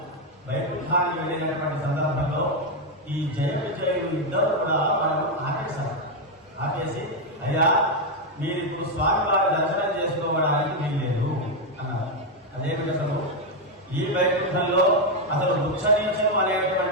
వైకుంఠానికి వెళ్ళినటువంటి సందర్భంలో ఈ జయ విజయులు 2 కూడా వాళ్ళు ఆపేశారు. ఆపేసి అయ్యా మీరు ఇప్పుడు స్వామివారి దర్శనం చేసుకోవడానికి వీల్లేదు అన్నారు. అదేమిటి అసలు ఈ వైకుంఠంలో అసలు వృక్షనీచం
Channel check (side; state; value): both; normal; correlation 0.03